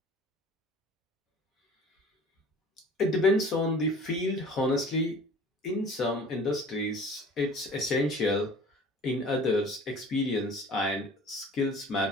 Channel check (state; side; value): normal; both; correlation 0.46